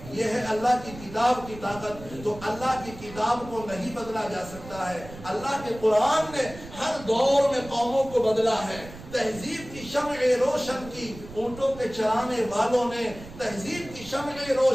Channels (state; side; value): noise; right; rumble, 15 dB below the sound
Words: یہ ہے اللہ کی کتاب کی طاقت۔ تو اللہ کی کتاب کو نہیں بدلا جا سکتا ہے۔ اللہ کے قرآن نے ہر دور میں قوموں کو بدلا ہے۔ تہذیب کی شمع روشن کی اونٹوں کے چرانے والوں نے، تہذیب کی شمع